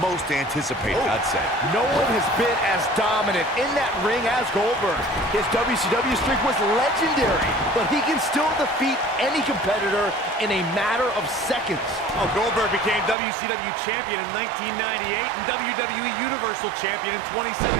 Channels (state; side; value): drops out; left; at 13.2 s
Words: most anticipated, I'd say. No one has been as dominant in that ring as Goldberg. His WCW streak was legendary, but he can still defeat any competitor in a matter of seconds. Oh, Goldberg became WCW champion in 1998 and WWE Universal champion in 2017.